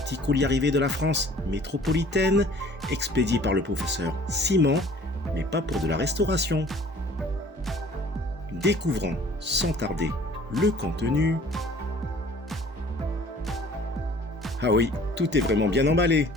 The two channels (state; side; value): normal; both; correlation 0.51